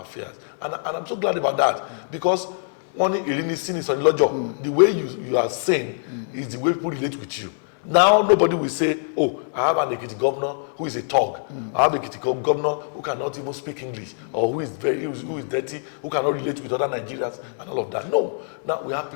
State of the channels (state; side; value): silent; right; 60 dB below the other